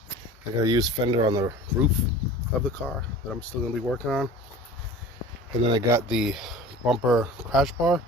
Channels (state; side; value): normal; both; correlation 0.40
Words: I got a used fender on the roof of the car that I'm still going to be working on. And then I got the bumper crash bar.